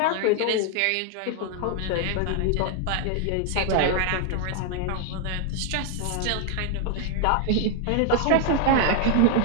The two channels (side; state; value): both; different; correlation 0.00